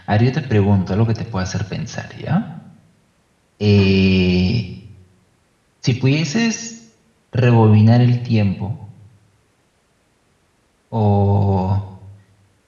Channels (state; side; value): identical; both; correlation 1.00